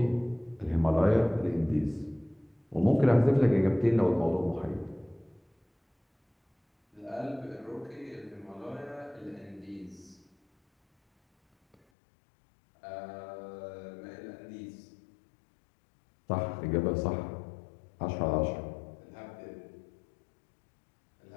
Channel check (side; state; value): right; drops out; at 11.8 s